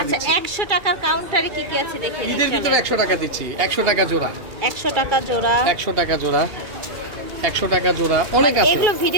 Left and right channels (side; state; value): left; late; 2.3 ms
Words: আচ্ছা, দিচ্ছি। 100 টাকার কাউন্টারে কি কি আছে দেখে নিন। ঈদের ভিতরে 100 টাকা দিচ্ছি, 100 টাকা জোড়া, 100 টাকা জোড়া, 100 টাকা জোড়া, 100 টাকা জোড়া, অনেক আছে। এগুলো